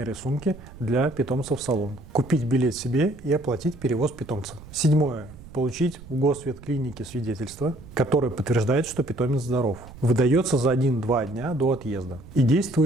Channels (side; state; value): right; noise; rumble, 18 dB below the sound